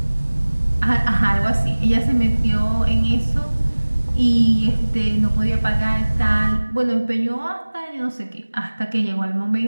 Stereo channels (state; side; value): inverted; both; correlation -1.00